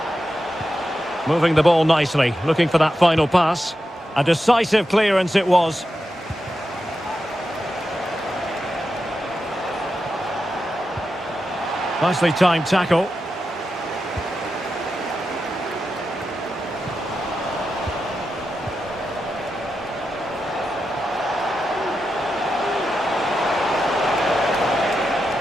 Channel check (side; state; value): both; normal; correlation 0.89